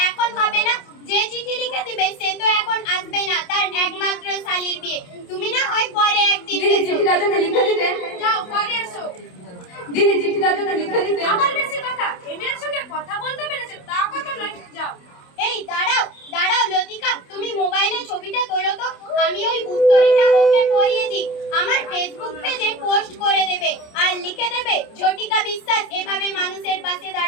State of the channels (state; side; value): late; right; 28 ms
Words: এখন হবে না, যে চিঠি লিখে দিবে সে তো এখন আসবে না, তার একমাত্র শালীর বিয়ে। তুমি না হয় পরে একদিন দিদি চিঠিটা যদি লিখে দিতেন। যাও পরে এসো। দিদি চিঠিটা যদি লিখে দিতে। আমার বেশি কথা, এমএর সঙ্গে কথা বলতে পেরেছে তা কথা নয়। যাও। এই দাঁড়াও দাঁড়াও লতিকা, তুমি মোবাইলে ছবিটা তোলো তো, আমি ওই উত্তরীটা ওকে পড়িয়ে দিই। আমার ফেসবুক পেজে পোস্ট করে দেবে আর লিখে দেবে ঝটিকা বিশ্বাস এভাবে মানুষের পাশে